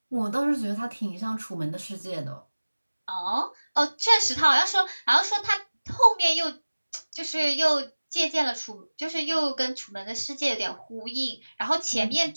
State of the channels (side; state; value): both; inverted; correlation -1.00